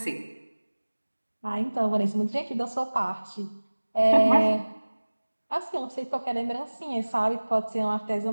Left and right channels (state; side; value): inverted; both; correlation -1.00